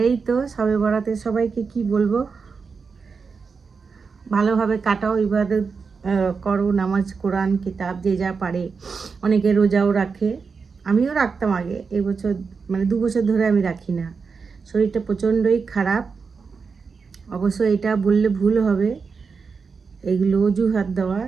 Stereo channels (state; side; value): quieter; left; 5.2 dB